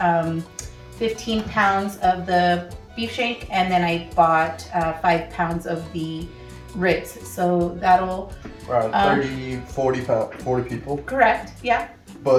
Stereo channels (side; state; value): both; identical; correlation 1.00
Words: 15 pounds of the beef shank, and then I bought 5 pounds of the ribs. So that'll Around 30, 40 people. correct, yeah.